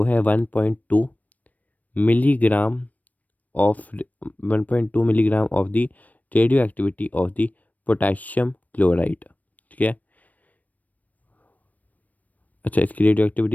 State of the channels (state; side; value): late; right; 0.075 ms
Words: है 1.2 milligram of 1.2 milligram of the radio activity of the potassium chloride, ठीक है। अच्छा, इसकी रेडियो